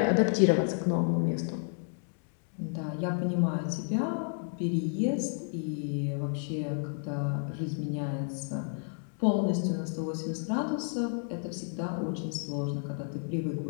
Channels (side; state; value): right; silent; 56 dB below the other